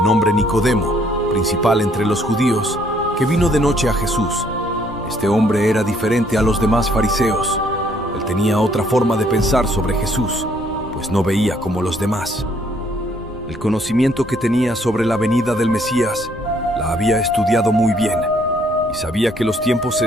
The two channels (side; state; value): left; noise; rumble, 16 dB below the sound